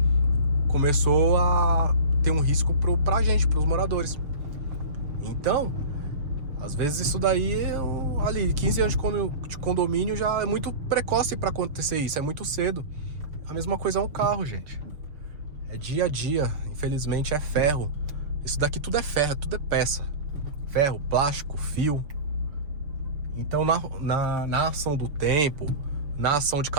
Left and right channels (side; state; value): left; late; 6.7 ms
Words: começou a ter um risco pra gente, pros moradores. Então, às vezes isso daí, ali, 15 anos de condomínio já é muito precoce para acontecer isso, é muito cedo. A mesma coisa é um carro, gente. É dia a dia, infelizmente é ferro. Isso daqui tudo é ferro, tudo é peça. Ferro, plástico, fio. Então, na ação do tempo, na ação de